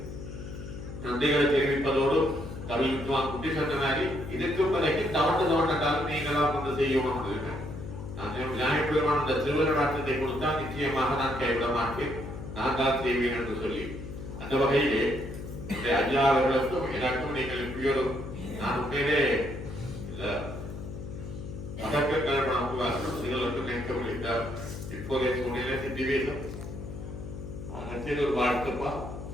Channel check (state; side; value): noise; left; hum, 9 dB below the sound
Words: நன்றிகளை தெரிவிப்பதோடு கவி வித்வான் குட்டி சொன்ன மாதிரி இதுக்கு பிறகு தவண்டாலும் நீங்களாம் வந்து செய்யணும். நான் விநாயகர் பெருமான் அந்த திருவருளாற்றத்தை கொடுத்தால் நிச்சயமாக நான் கைவிட மாட்டேன், நான் தான் செய்வேன் என்று சொல்லி அந்த வகையிலே ஐயா அவர்களுக்கும் எனக்கும் நீங்கள் இப்படியோடு நான் உண்மையிலே அதற்கு கல்பனாக்குவார்கள் நீங்களுக்கும் நினைக்க முடிந்தார். இப்போதைய சூழ்நிலை சித்திவேசம் ஒரு வாழ்த்துப்பா